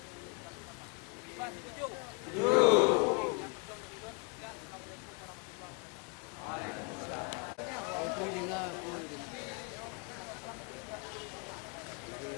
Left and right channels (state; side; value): quieter; right; 32.8 dB